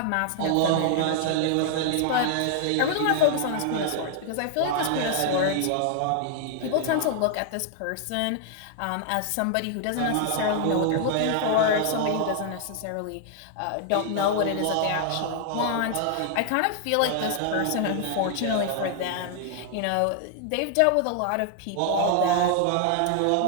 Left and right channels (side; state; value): both; different; correlation 0.00